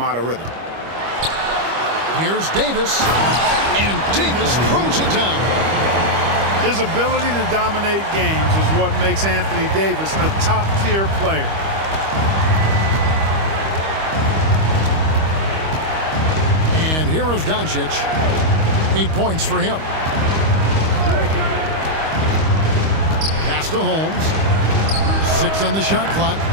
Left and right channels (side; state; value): left; late; 25 ms